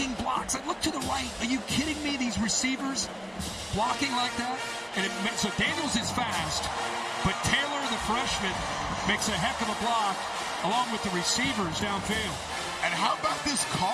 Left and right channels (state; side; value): identical; both; correlation 1.00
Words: blocks. I look to the right. Are you kidding me? These receivers blocking like that? So Daniels is fast, but Taylor, the freshman, makes a heck of a block along with the receivers downfield. And how about this